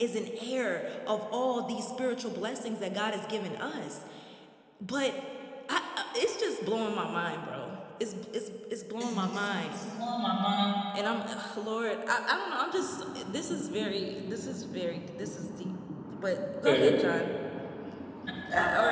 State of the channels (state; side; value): identical; both; correlation 1.00